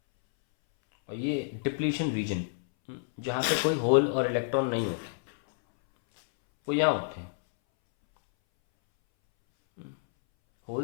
और ये डिप्लीशन रीजन, जहाँ पे कोई होल और इलेक्ट्रॉन नहीं होते, वो यहाँ होते हैं,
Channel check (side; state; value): right; silent; 59 dB below the other